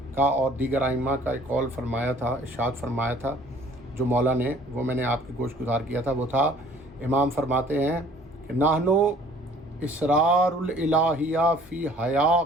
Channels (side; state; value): both; normal; correlation 0.54